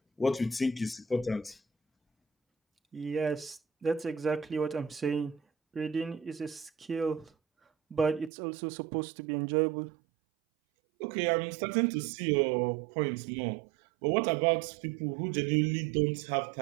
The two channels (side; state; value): left; drops out; at 8.3 s